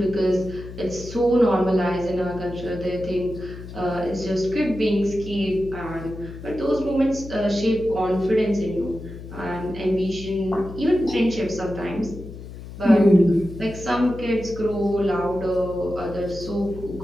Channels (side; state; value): left; noise; hum, 13 dB below the sound